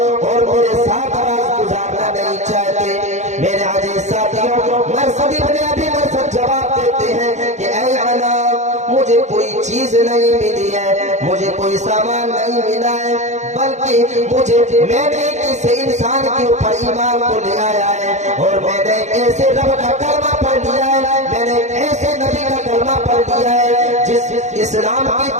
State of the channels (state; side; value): late; left; 0.34 ms